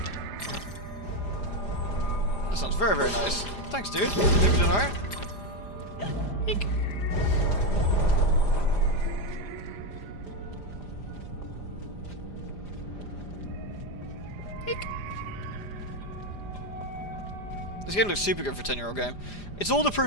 That sounds very, very nice. Thanks, dude. Think you're doing alright? Eek. Eek. This game looks super good for a 10-year-old game. It's all the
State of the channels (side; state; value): right; late; 5.0 ms